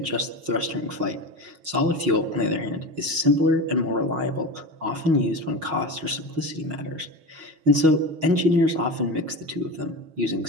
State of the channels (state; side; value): late; left; 6.3 ms